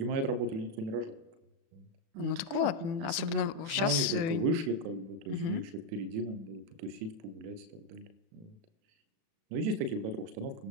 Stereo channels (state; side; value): late; left; 36 ms